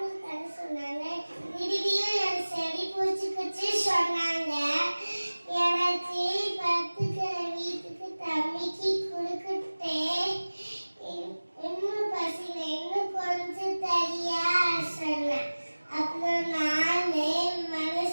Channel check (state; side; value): inverted; both; correlation -1.00